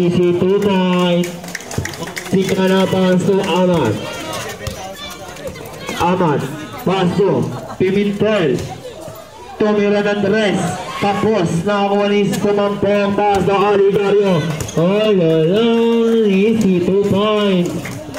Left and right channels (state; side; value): identical; both; correlation 1.00